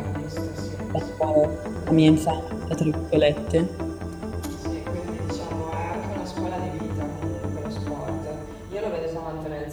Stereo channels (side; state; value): both; identical; correlation 1.00